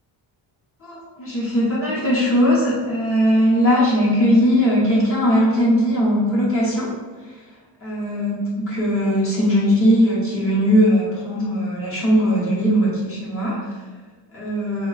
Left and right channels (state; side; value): normal; both; correlation 0.54